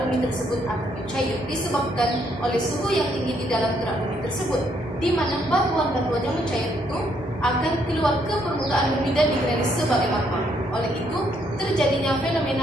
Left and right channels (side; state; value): both; normal; correlation 0.71